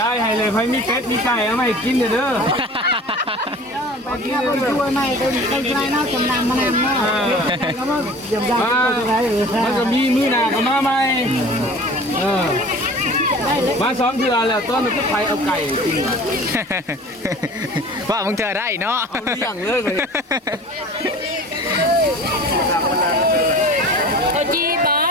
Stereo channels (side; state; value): both; normal; correlation 0.42